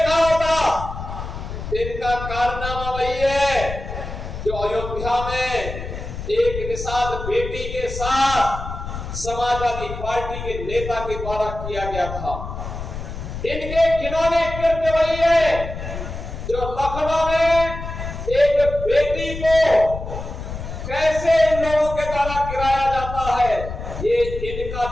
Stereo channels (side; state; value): left; noise; rumble, 8 dB below the sound